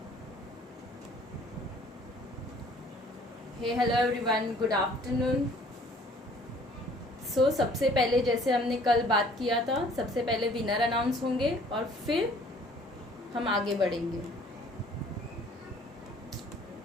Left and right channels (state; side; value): normal; both; correlation 0.55